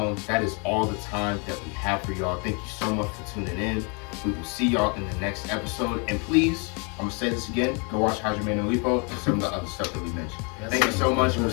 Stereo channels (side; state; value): right; quieter; 34.6 dB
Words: that is all the time that we have for y'all. Thank you so much for tuning in. We will see y'all in the next episode. And please, I'm going to say this again, go watch Hajime no Ippo and some of the other stuff that we mentioned. Thank you so much, and we'll